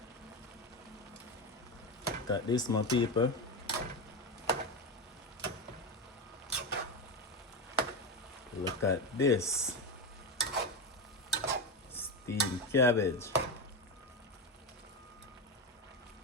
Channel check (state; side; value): normal; both; correlation 0.15